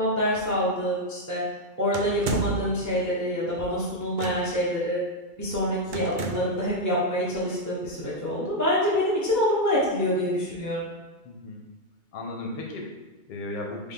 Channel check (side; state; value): right; late; 2.3 ms